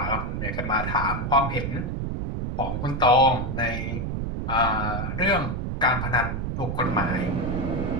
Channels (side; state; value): right; noise; rumble, 3 dB below the sound